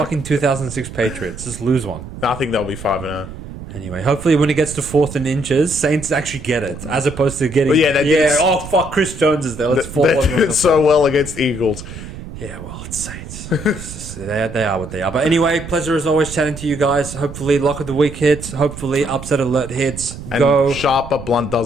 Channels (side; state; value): right; noise; rumble, 12 dB below the sound